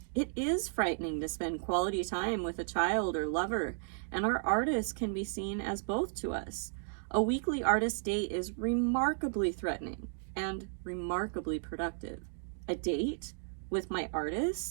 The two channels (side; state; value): left; silent; digital silence